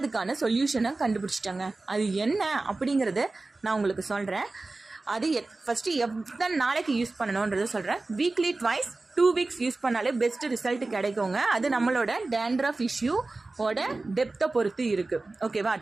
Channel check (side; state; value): left; quieter; 3.3 dB